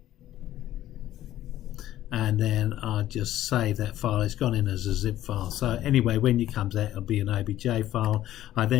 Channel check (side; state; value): right; quieter; 13.4 dB